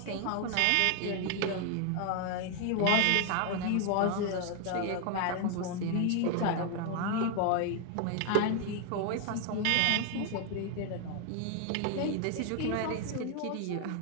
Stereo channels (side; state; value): both; different; correlation 0.00